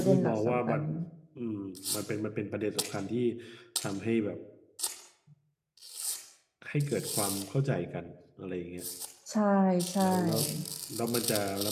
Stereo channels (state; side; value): identical; both; correlation 1.00